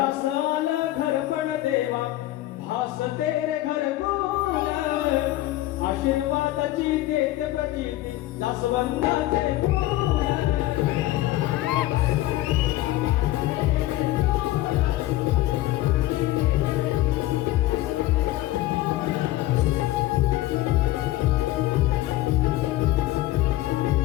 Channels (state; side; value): quieter; right; 15.9 dB